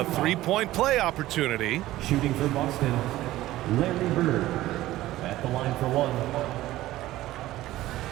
three-point play opportunity. Shooting for Boston, Larry Bird at the line for one.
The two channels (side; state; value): left; quieter; 15.8 dB